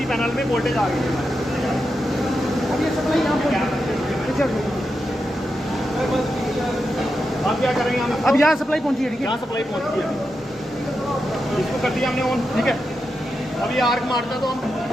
पैनल में वोल्टेज आ गई है। अब क्या करेंगे हम? अब यहाँ सप्लाई पहुंची है, ठीक है। यहाँ सप्लाई पहुंची है, इसको कर दिया हमने ऑन, ठीक है। अब ये आर्क मारता है तो हम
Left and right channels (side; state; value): both; normal; correlation 0.87